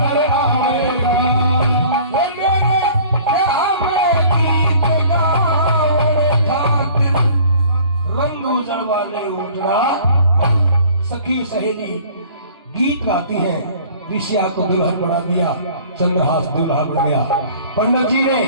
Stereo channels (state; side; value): inverted; both; correlation -0.50